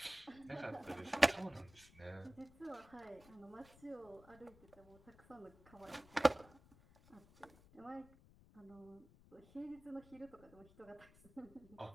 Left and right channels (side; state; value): left; noise; rumble, 23 dB below the sound